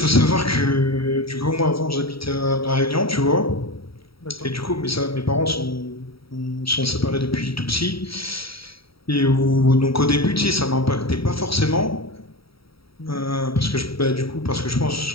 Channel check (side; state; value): right; late; 0.75 ms